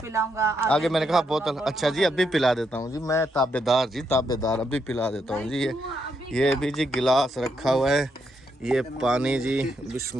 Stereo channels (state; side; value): normal; both; correlation 0.79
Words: आगे मैंने कहा बोतल, अच्छा जी अभी पिला देता हूँ जी, मैं ताबेदार जी, ताबेदार, अभी पिला देता हूँ जी। ये भी जी गिलास रखा हुआ है, ये पानी जी,